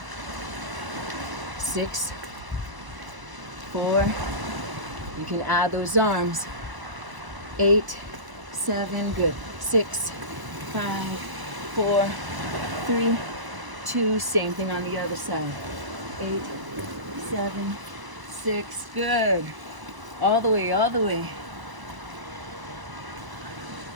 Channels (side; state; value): left; late; 1.0 ms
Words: 6, 4. You can add those arms. 8, 7, good. 6, 5, 4, 3, 2, same thing on the other side. 8, 7, 6, good. All the way, all the way.